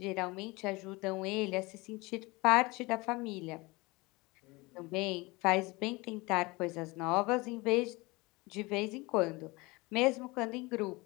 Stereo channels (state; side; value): quieter; right; 23.9 dB